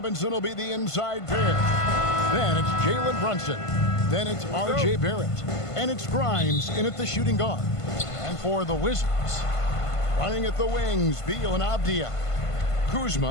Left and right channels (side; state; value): right; late; 1.5 ms